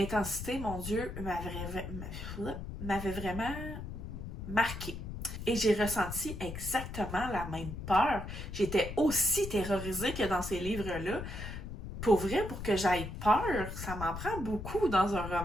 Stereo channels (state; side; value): noise; left; rumble, 8 dB below the sound